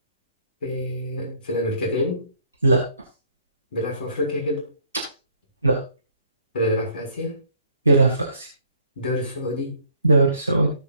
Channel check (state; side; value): inverted; both; correlation -0.63